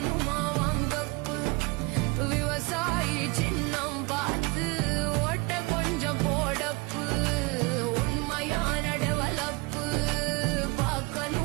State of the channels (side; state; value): left; quieter; 26.3 dB